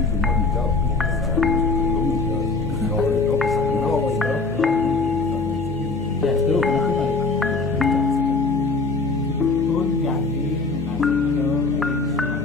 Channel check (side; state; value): right; quieter; 3.9 dB